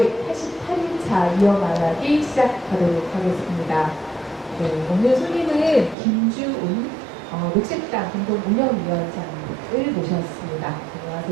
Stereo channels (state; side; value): drops out; left; at 6.0 s